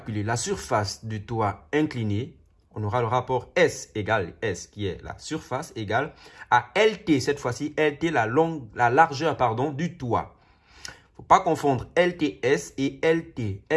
la surface du toit incliné, on aura le rapport S égale S, qui est la surface égale à LT. Cette fois-ci, LT, la largeur du toit. Il ne faut pas confondre LTS et LT.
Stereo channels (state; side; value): identical; both; correlation 1.00